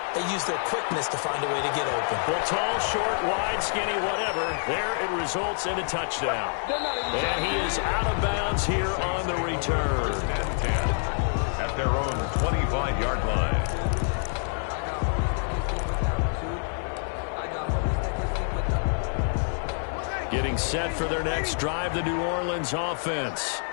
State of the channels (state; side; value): silent; right; 60 dB below the other